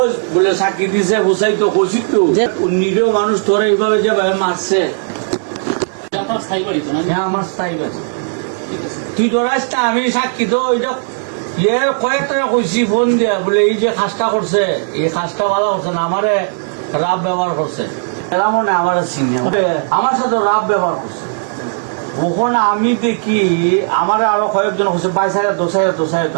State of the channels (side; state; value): left; silent; digital silence